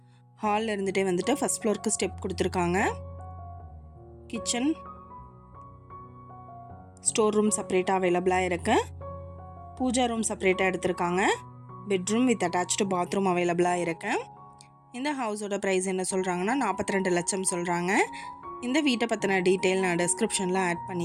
இருந்துகிட்டே வந்துட்டு ஃபஸ்ட் ஃப்ளோருக்கு ஸ்டெப் கொடுத்துருக்காங்க. கிச்சன், ஸ்டோர் ரூம் செப்பரேட்டாக அவைலபிளாக இருக்குது. பூஜா ரூம் செப்பரேட்டாக எடுத்திருக்காங்க. பெட்ரூம் வித் அட்டாச்டு பாத்ரூம் அவைலபிளாக இருக்குது. இந்த ஹவுஸோட ப்ரைஸ் என்ன சொல்கிறாங்கன்னா 42 லட்சம் சொல்கிறாங்க. இந்த வீட்டை பற்றின டீட்டெயில் நான் டிஸ்கிரிப்ஷனில் ஆட்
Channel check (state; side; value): identical; both; correlation 1.00